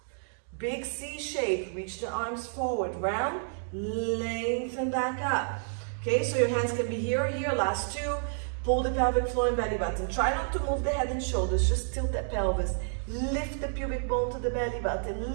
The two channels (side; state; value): left; silent; digital silence